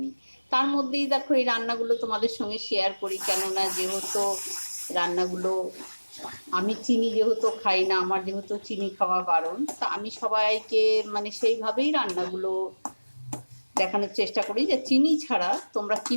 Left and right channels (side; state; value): both; inverted; correlation -1.00